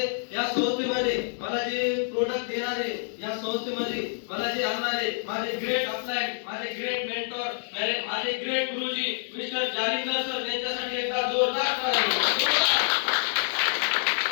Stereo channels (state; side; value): silent; right; 60 dB below the other